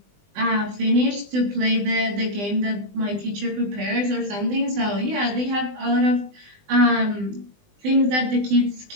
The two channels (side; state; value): left; late; 20 ms